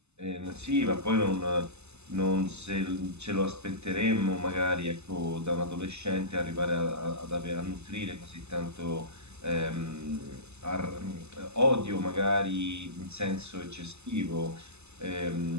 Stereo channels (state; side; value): late; left; 0.80 ms